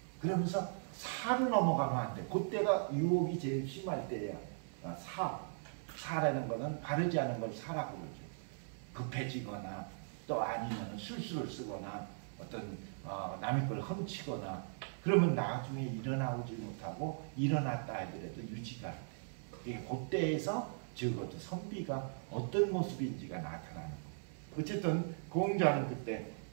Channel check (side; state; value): left; silent; 52 dB below the other